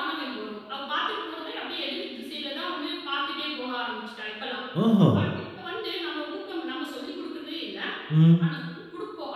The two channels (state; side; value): identical; both; correlation 1.00